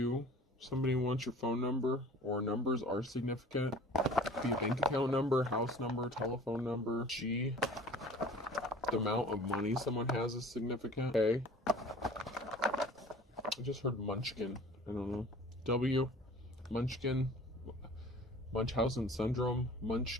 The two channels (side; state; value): both; normal; correlation 0.45